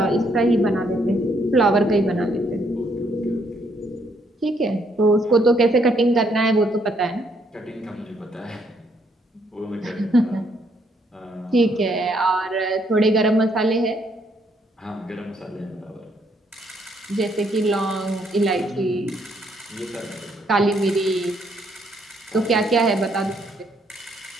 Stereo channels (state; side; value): normal; both; correlation 0.71